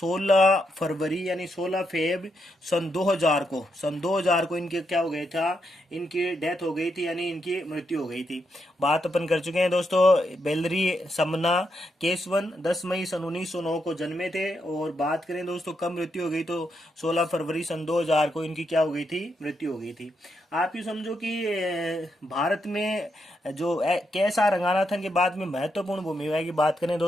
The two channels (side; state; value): both; normal; correlation 0.81